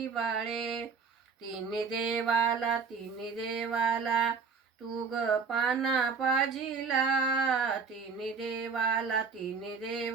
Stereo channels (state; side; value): quieter; left; 5.3 dB